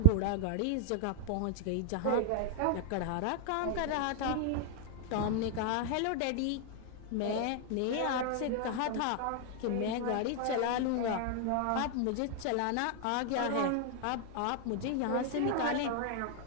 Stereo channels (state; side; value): different; both; correlation 0.00